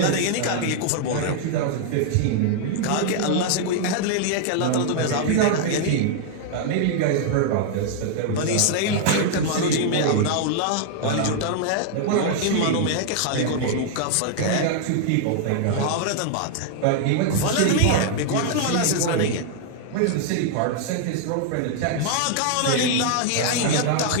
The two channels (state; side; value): different; both; correlation 0.00